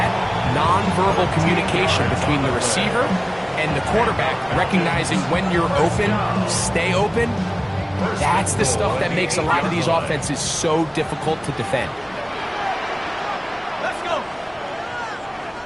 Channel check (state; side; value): identical; both; correlation 1.00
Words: nonverbal communication between the receiver and the quarterback, recognizing when you're open, stay open, that's the stuff that makes a lot of these offenses so difficult to defend. Let's go.